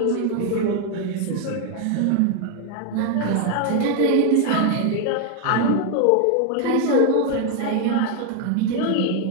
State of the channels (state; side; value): different; both; correlation 0.01